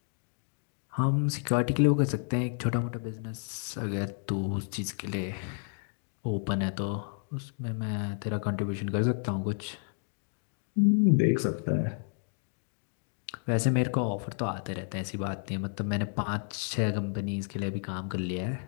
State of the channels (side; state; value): right; silent; 57 dB below the other